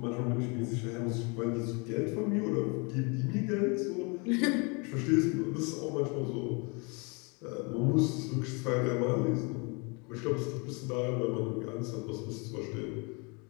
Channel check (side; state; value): right; quieter; 31.4 dB